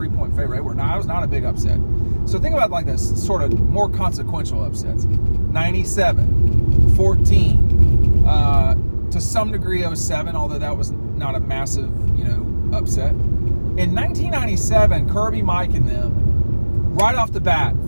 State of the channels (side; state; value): both; inverted; correlation -1.00